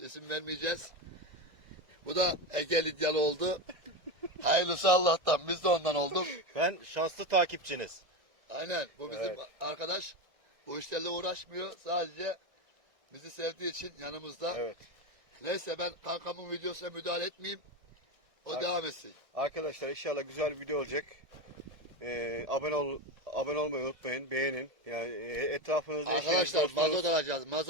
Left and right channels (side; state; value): left; late; 1.6 ms